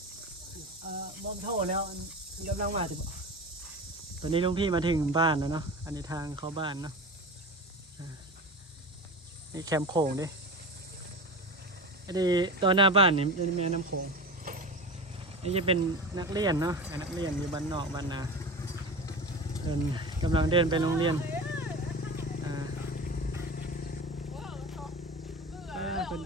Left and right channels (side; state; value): both; normal; correlation 0.30